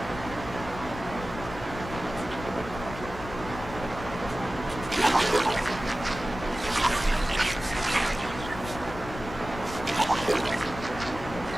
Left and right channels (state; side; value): noise; left; rumble, 11 dB below the sound